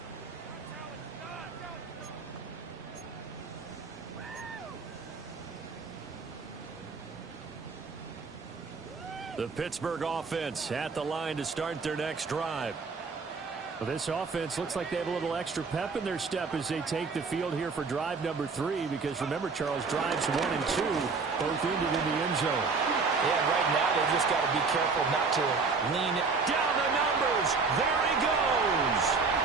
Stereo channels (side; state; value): left; quieter; 4.6 dB